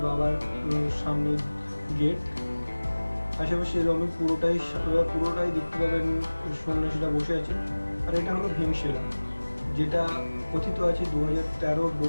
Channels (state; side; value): inverted; both; correlation -1.00